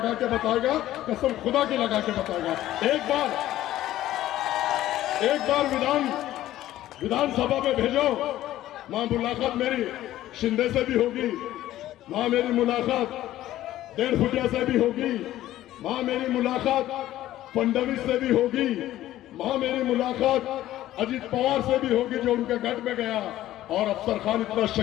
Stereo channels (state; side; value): quieter; right; 14.1 dB